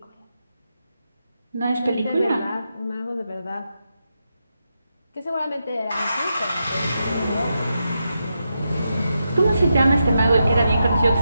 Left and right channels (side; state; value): both; inverted; correlation -0.86